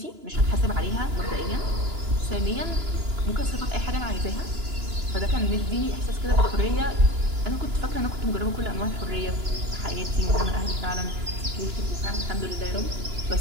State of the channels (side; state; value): left; late; 2.9 ms